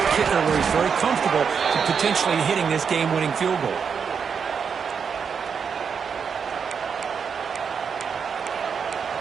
kicker where he's very comfortable to potentially hitting this game-winning field goal.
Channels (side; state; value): left; quieter; 6.4 dB